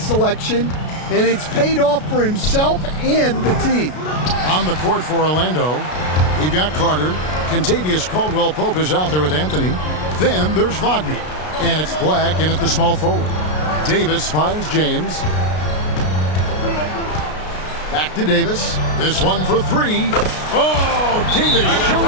and it's paid off for himself and the team. On the court for Orlando, we've got Carter. Kentavious Caldwell Pope is out there with Anthony. Then there's Wagner, and it's Black in at the small forward. Davis finds James. Back to Davis. This one for 3. Oh, Davis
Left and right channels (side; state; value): right; late; 33 ms